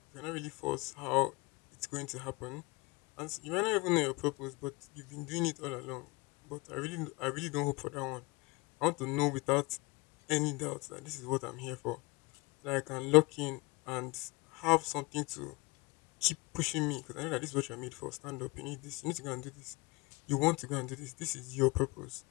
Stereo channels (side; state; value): right; quieter; 26.2 dB